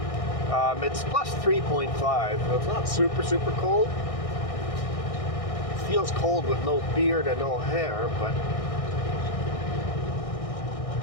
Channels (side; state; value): right; late; 1.6 ms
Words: It's plus 3.5, so it's not super cold. It feels cold with no beard and no hair, but